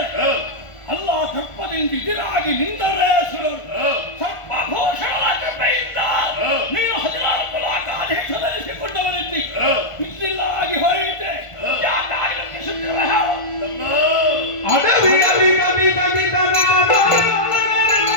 ಅಲ್ಲ ಸರ್ಪದಿಂದ ಎದುರಾಗಿ ನಿಂದ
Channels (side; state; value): right; late; 1.5 ms